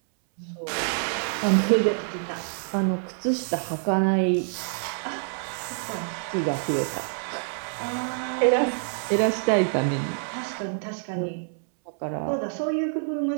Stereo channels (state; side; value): silent; left; 61 dB below the other